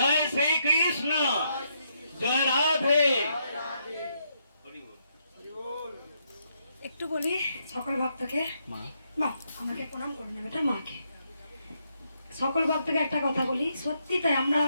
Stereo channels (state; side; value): inverted; both; correlation -0.77